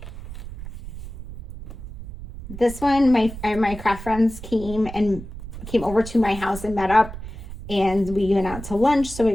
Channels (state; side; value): noise; right; rumble, 11 dB below the sound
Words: This one, my craft friends came over to my house and met up, and we went out to lunch. So we